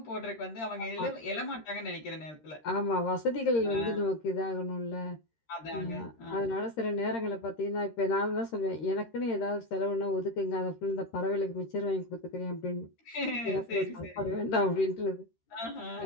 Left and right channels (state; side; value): late; right; 13 ms